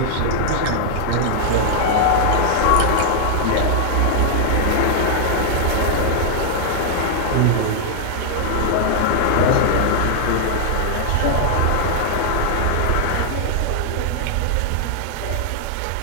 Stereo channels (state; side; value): different; both; correlation 0.00